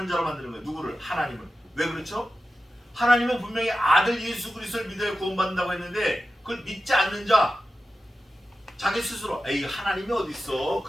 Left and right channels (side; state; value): both; normal; correlation 0.93